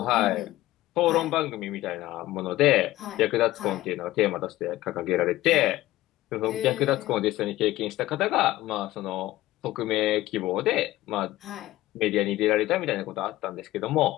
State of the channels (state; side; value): quieter; right; 16.5 dB